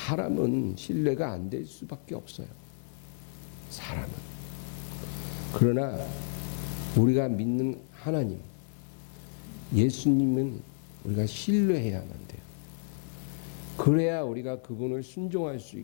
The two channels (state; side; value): silent; right; 57 dB below the other